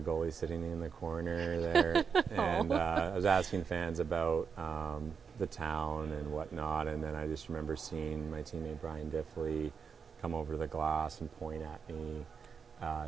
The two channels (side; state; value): left; quieter; 6.1 dB